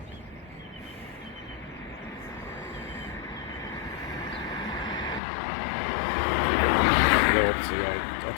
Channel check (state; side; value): drops out; right; at 5.2 s